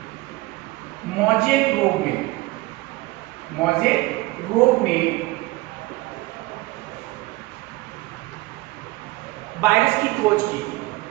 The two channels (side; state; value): left; quieter; 20.5 dB